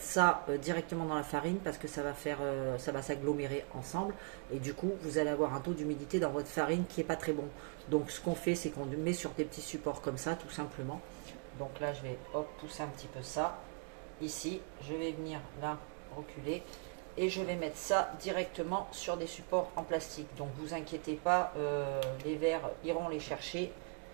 ça directement dans la farine parce que ça va s'agglomérer ensemble. Et du coup, vous allez avoir un taux d'humidité dans votre farine qui est pas très bon. Donc, ce qu'on fait, c'est qu'on met sur des petits supports comme ça, tout simplement. Donc là, je vais pousser un petit peu ça. Ici, je vais venir là, reculer. Et je vais mettre ça directement sur des supports en plastique. Donc, vous inquiétez pas, les vers iront les chercher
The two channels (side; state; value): left; quieter; 38.6 dB